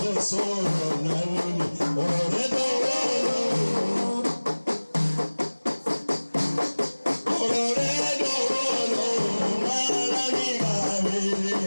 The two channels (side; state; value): both; inverted; correlation -1.00